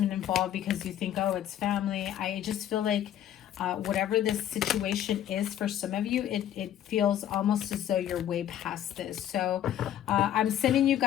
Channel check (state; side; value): quieter; right; 11.1 dB